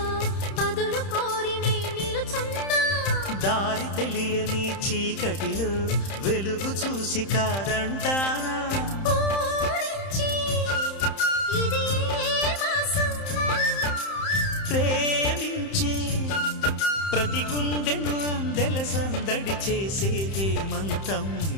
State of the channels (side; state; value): right; late; 31 ms